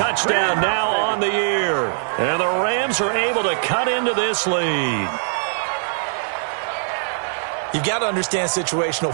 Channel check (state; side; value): silent; left; digital silence